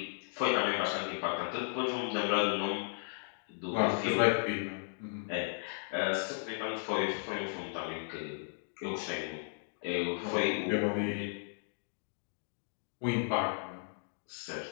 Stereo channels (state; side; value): silent; right; digital silence